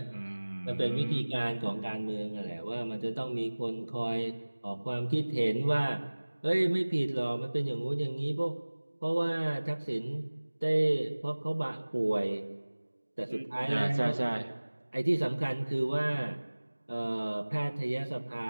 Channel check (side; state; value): both; inverted; correlation -1.00